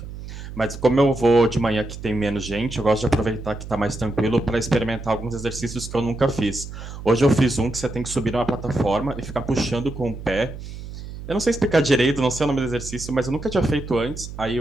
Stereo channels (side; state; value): right; noise; hum, 11 dB below the sound